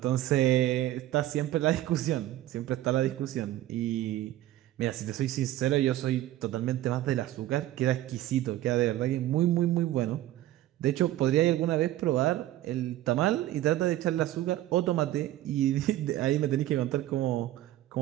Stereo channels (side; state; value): left; quieter; 14.5 dB